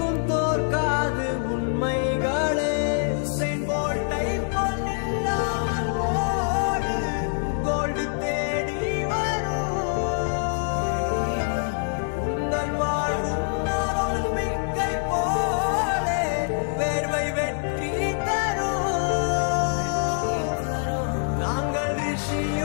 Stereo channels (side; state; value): right; silent; 59 dB below the other